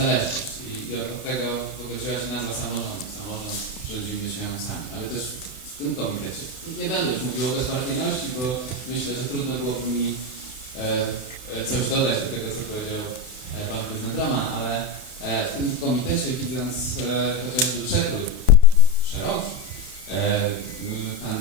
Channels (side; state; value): right; late; 32 ms